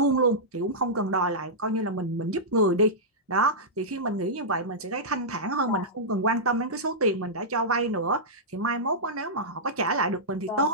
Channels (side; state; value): both; normal; correlation -0.12